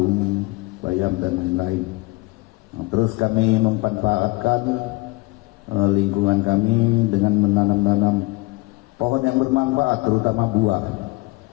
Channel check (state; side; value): quieter; right; 24.3 dB